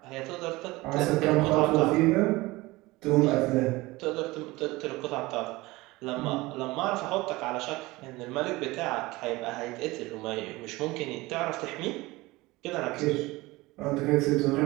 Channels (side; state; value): left; quieter; 20.8 dB